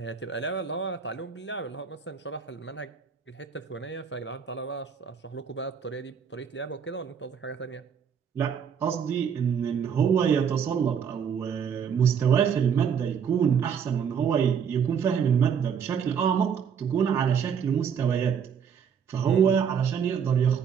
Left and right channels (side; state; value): left; quieter; 7.3 dB